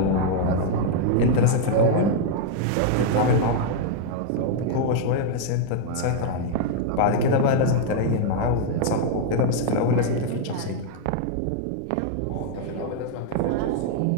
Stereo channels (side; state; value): both; different; correlation 0.00